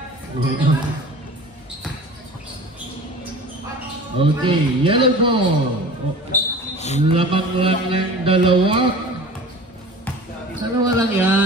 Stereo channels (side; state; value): both; normal; correlation 0.40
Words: Okay, yellow ball. Lamang lang ng dalawa. Dalawa lang